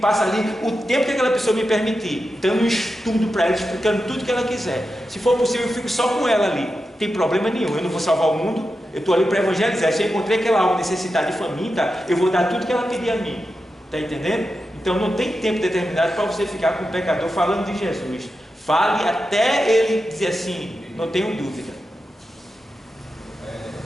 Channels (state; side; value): normal; both; correlation 0.90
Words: ali o tempo que aquela pessoa me permitir, dando um estudo para ela, explicando tudo que ela quiser. Se for possível, eu fico só com ela ali. Não tem problema nenhum, eu não vou salvar o mundo, eu estou ali para evangelizar. Se eu encontrei aquela alma necessitada de faminta, eu vou dar tudo que ela pedir a mim. Está entendendo? Então não tem tempo determinado para você ficar com o pecador falando de Jesus. Fale até ele dizer assim, não tenho dúvida.